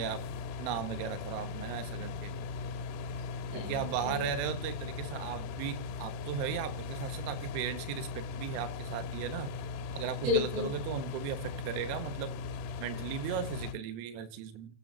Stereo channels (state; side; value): late; left; 31 ms